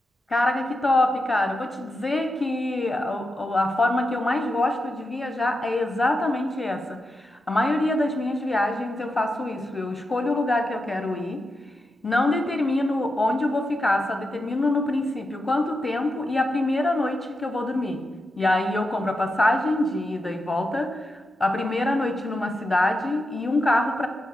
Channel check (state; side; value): normal; both; correlation 0.87